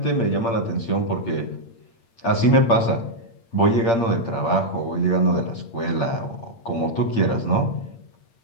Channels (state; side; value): late; right; 8.7 ms